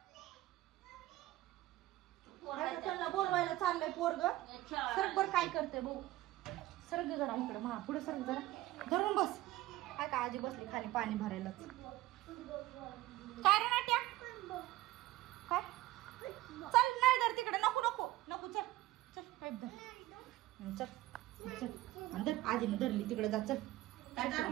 त्याला बोलवायला चाललंय पोरग. सरक बर काय करते भाऊ? सरक जरा इकडं, मा पुढे सरक जरा, धरून बस. हाय का? आजी बसली खाली पाणी भरायला. काय रे नाट्या? काय? चल नाही धर तिकडे, नको नको नको, चल चल पाईप धर. चल चल धर, आजीने धरली तिकडे, जा चल.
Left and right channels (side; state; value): left; quieter; 16.6 dB